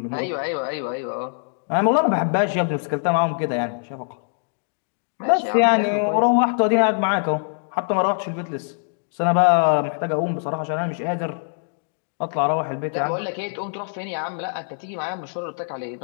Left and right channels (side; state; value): right; silent; digital silence